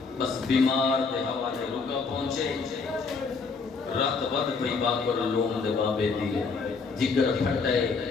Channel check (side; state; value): right; quieter; 4.7 dB